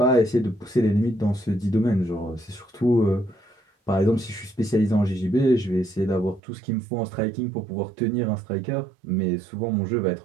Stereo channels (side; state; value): left; drops out; at 6.4 s